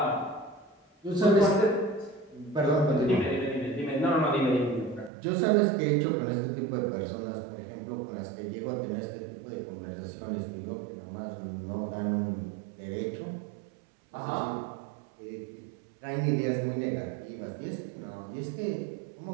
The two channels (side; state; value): left; drops out; at 5.1 s